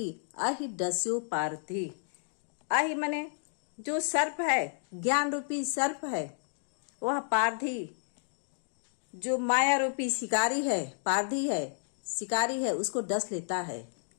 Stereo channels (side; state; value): right; silent; digital silence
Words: अहि डस्यो पारधि, अहि मने जो सर्प है, ज्ञान रूपी सर्प है, वह पारधि जो माया रूपी शिकारी है, पारधी है, शिकारी है, उसको डस लेता है।